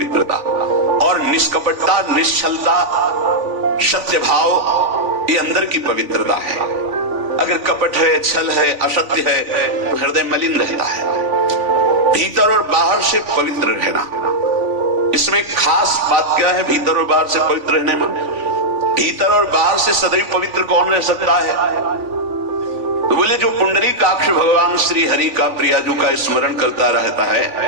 और निष्कपटता, निश्चलता, सत्य भाव, ये अंदर की पवित्रता है। अगर कपट है, छल है, असत्य है तो हृदय मलिन रहता है। भीतर और बाहर से पवित्र रहना, इसमें खास बात क्या है? भीतर और बाहर से पवित्र रहने में, भीतर और बाहर से सदैव पवित्र कौन रह सकता है? तो बोले जो पुंडरीकाक्ष भगवान श्री हरि का, प्रियाजू का स्मरण करता रहता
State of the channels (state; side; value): late; left; 3.5 ms